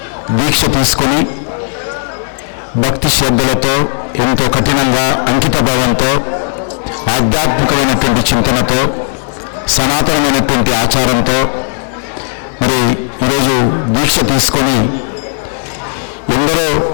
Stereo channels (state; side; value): silent; right; digital silence